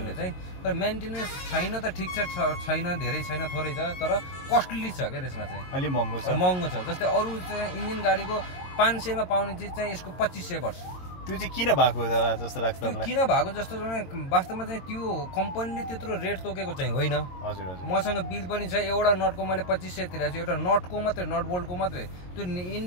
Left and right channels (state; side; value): late; right; 22 ms